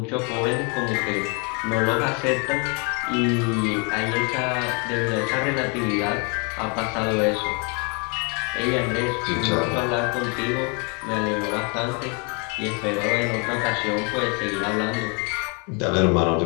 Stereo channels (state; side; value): quieter; right; 33.7 dB